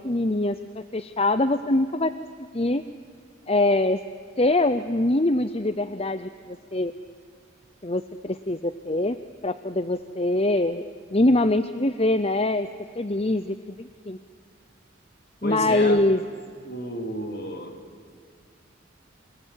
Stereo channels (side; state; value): both; normal; correlation 0.47